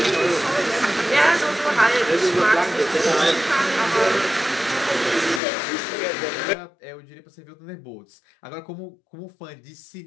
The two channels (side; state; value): right; drops out; at 5.4 s